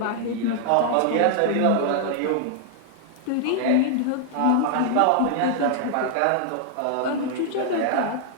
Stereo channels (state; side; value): different; both; correlation 0.00